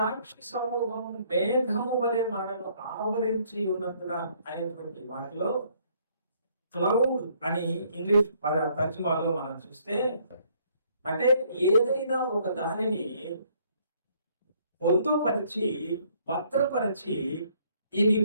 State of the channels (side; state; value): both; inverted; correlation -0.65